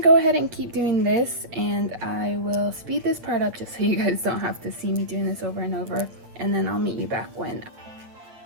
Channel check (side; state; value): left; late; 8.5 ms